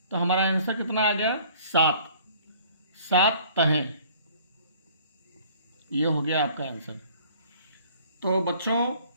तो हमारा आंसर कितना आ गया, 7। 7 तहें, ये हो गया आपका आंसर। तो बच्चों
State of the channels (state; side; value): inverted; both; correlation -0.54